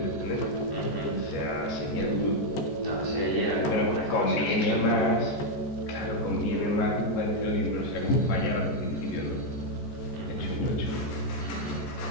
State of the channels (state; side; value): late; right; 14 ms